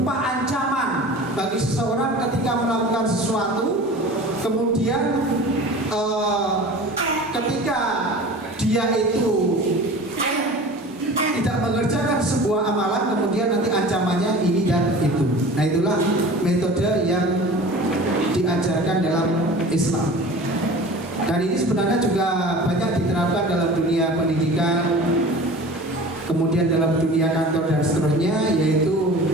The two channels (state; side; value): normal; both; correlation 0.39